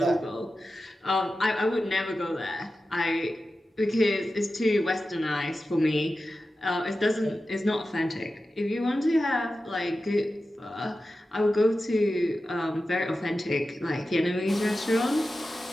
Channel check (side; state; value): both; normal; correlation 0.93